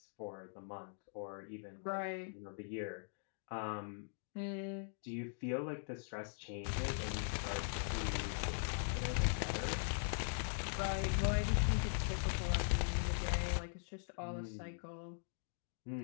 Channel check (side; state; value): right; silent; digital silence